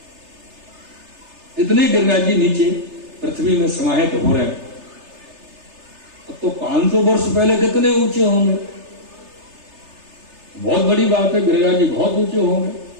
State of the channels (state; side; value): late; left; 3.3 ms